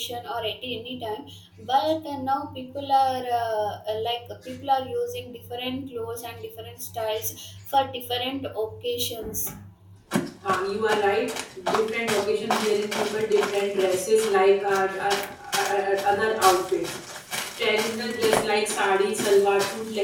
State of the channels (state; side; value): identical; both; correlation 1.00